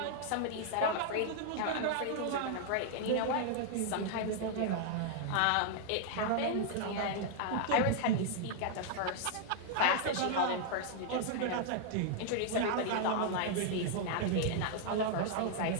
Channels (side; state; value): both; different; correlation 0.00